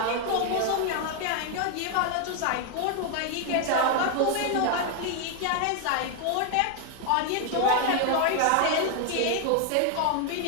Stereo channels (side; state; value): both; different; correlation 0.01